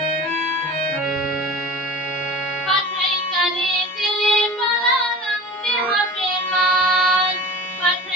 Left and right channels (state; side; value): normal; both; correlation 0.37